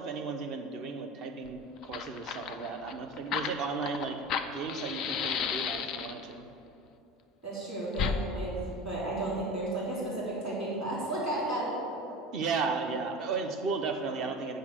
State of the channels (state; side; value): normal; both; correlation 0.32